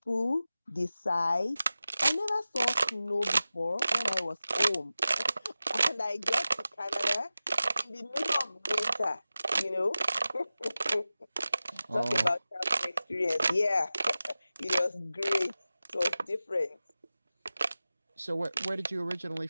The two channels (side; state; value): both; inverted; correlation -0.95